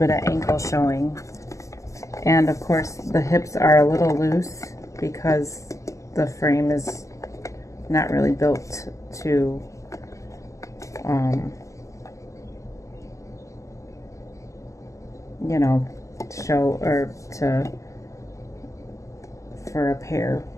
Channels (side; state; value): right; late; 0.16 ms